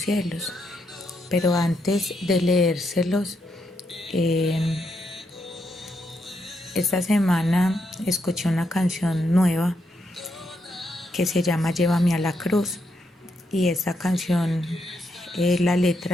Pero antes de leérselos, esta semana escuché una canción nueva que se llama Llévame a la cruz, y esta canción, la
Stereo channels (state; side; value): normal; both; correlation 0.79